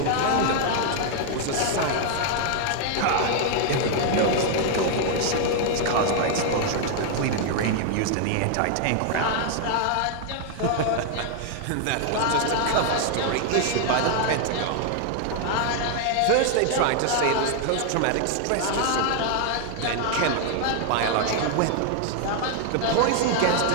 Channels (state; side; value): different; both; correlation 0.00